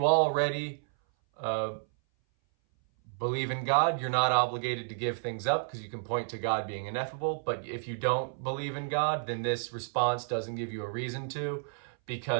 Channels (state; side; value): silent; left; 57 dB below the other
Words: already believe in God, you're not obligated to give things up because you can point to God being ineffable. But if you don't believe in God, then this response doesn't give you a reason to,